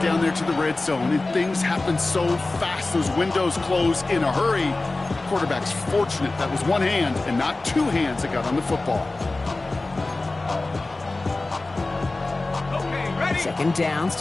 down there to the red zone, and things happen so fast. Those windows close in a hurry. The quarterback's fortunate that was one hand and not two hands that got on the football. Okay, ready? Second down,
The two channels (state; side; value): quieter; right; 3.2 dB